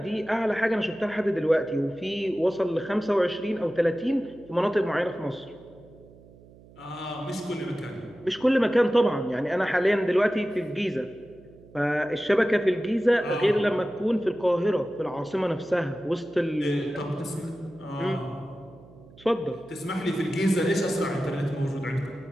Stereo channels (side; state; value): right; noise; hum, 23 dB below the sound